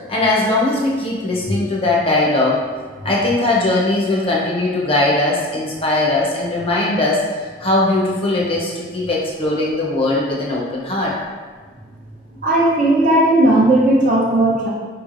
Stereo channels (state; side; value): normal; both; correlation 0.41